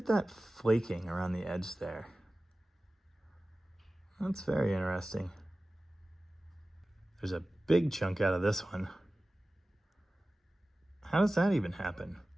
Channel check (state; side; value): normal; both; correlation 0.96